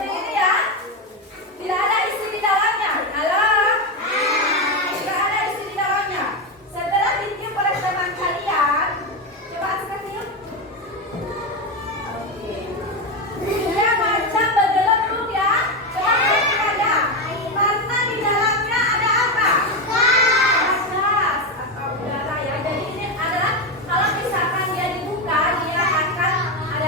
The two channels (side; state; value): both; normal; correlation 0.12